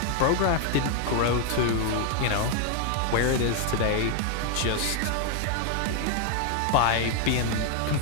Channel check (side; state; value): both; different; correlation 0.00